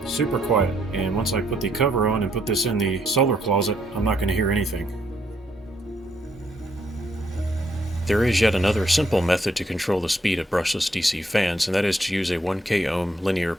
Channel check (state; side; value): normal; both; correlation 0.73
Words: Super quiet, and once I put the cover on and put this in the solar closet, I'm not going to hear anything. There is yet another simple method to control the speed of brushless DC fans, and that is to use a 1K ohm linear